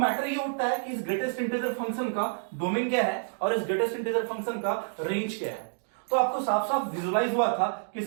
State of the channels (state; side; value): silent; left; digital silence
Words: ये उठता है कि इस ग्रेटेस्ट इंटीजर फंक्शन का डोमेन क्या है और इस ग्रेटेस्ट इंटीजर फंक्शन का रेंज क्या है। तो आपको साफ साफ विजुलाइज हुआ था कि